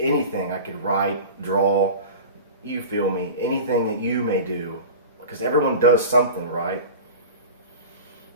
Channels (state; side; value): inverted; both; correlation -0.34